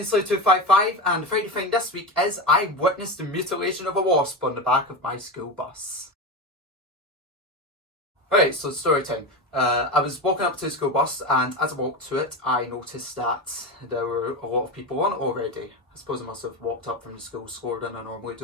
and the Friday thing this week is I witnessed the mutilation of a wasp on the back of my school bus. Right, so story time. I was walking up to the school bus, and as I walked to it, I noticed that there were a lot of people on it already. I suppose I must have walked up from the school slower than I normally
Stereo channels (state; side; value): normal; both; correlation 0.21